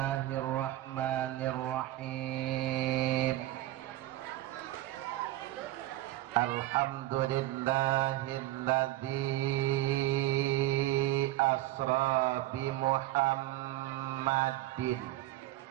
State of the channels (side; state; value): left; quieter; 16.0 dB